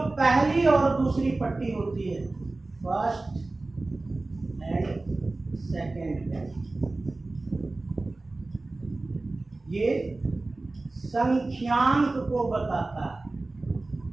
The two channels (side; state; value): left; quieter; 3.2 dB